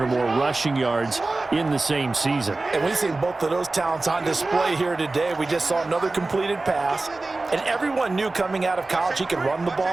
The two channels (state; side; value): quieter; left; 3.3 dB